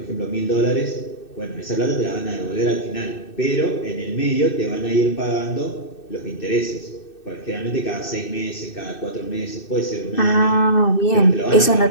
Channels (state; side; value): late; right; 2.6 ms